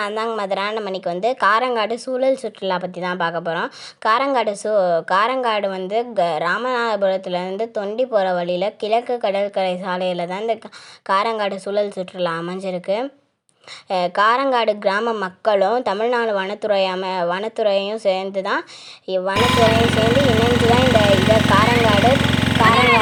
தாங்க மதுரா. நம்ம இன்னைக்கு காரங்காடு சூழல் சுற்றுலா பற்றி தான் பார்க்க போகிறோம். காரங்காடு ராமநாதபுரத்துலேருந்து தொண்டி போகிற வழியில் கிழக்கு கடற்கரை சாலையில் தான் இந்த காரங்காடு சூழல் சுற்றுலா அமைஞ்சிருக்கு. காரங்காடு கிராம மக்களும் தமிழ்நாடு வனத்துறையும் சேர்ந்து இணைஞ்சு தான் இந்த காரங்காடு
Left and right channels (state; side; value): identical; both; correlation 1.00